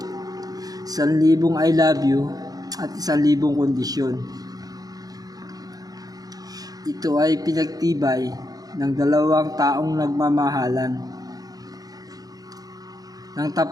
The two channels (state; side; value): late; left; 0.18 ms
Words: 1,000 I love you at 1,000 kondisyon. Ito ay pinagtibay ng dalawang taong nagmamahalan ng